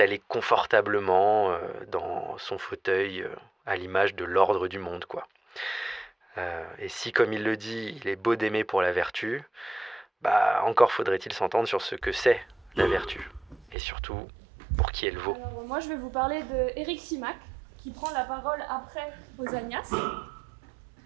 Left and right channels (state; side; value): drops out; left; at 13.8 s